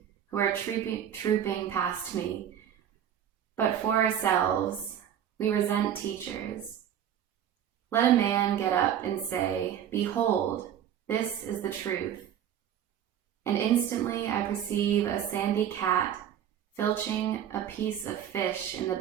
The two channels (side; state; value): left; quieter; 9.7 dB